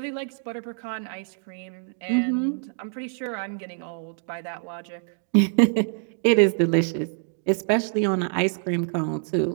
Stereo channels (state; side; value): silent; left; digital silence